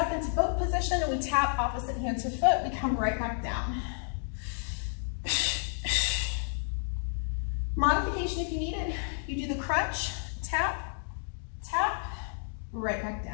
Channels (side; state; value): right; silent; digital silence